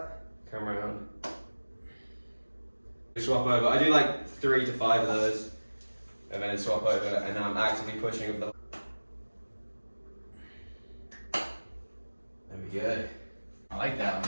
come around. Swap over. I do like 3 to 5 of those, and then swap over, and now I'm actively pushing with the. There we go. I like that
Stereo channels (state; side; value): inverted; both; correlation -1.00